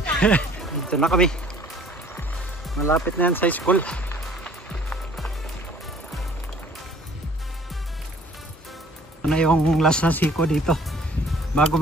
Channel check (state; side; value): normal; both; correlation 0.54